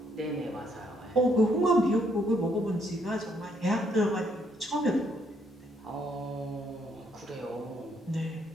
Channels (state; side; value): normal; both; correlation 0.71